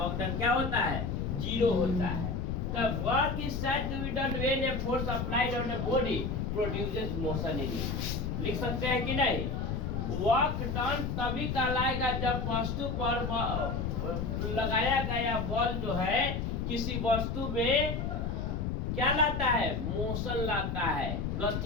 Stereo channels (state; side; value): noise; left; rumble, 2 dB below the sound